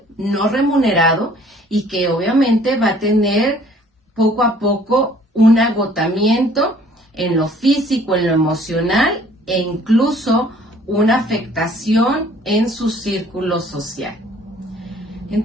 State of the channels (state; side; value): normal; both; correlation 0.56